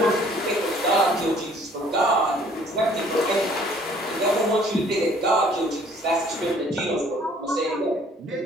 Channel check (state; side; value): normal; both; correlation 0.57